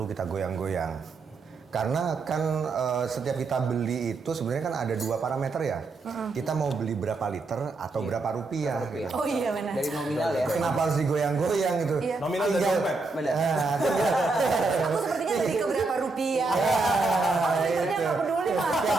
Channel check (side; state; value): left; quieter; 3.7 dB